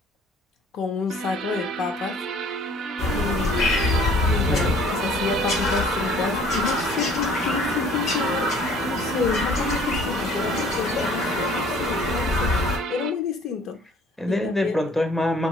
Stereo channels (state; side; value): normal; both; correlation 0.54